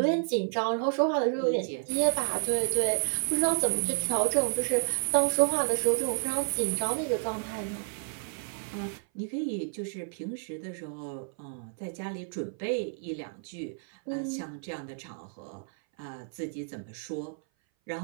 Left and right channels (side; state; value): left; silent; 57 dB below the other